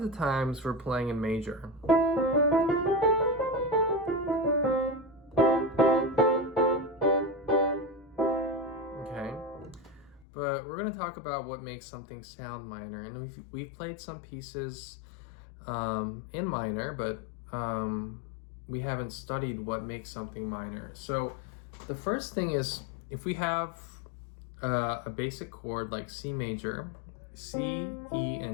the times we're playing in major. Okay. But we're going to talk about what makes something sound minor, and we've played some pieces in minor, but we haven't studied what makes something minor. So the first thing is, if we have a basic chord like C major, C, E,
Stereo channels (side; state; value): right; drops out; at 10.2 s